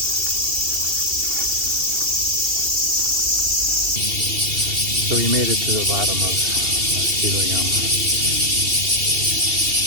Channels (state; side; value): late; left; 2.7 ms